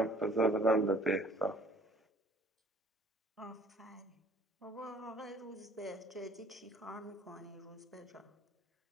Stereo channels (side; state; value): both; normal; correlation 0.55